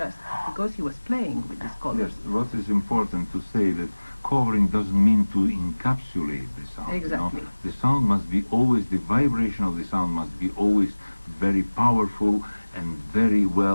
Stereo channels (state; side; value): inverted; both; correlation -1.00